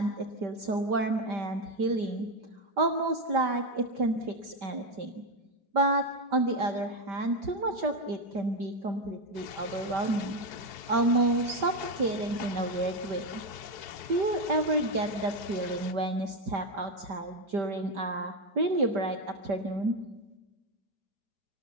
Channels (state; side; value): late; left; 5.1 ms